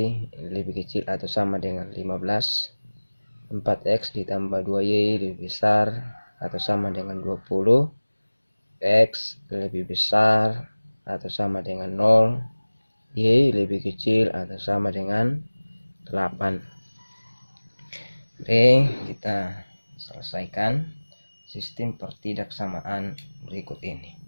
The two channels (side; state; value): both; inverted; correlation -1.00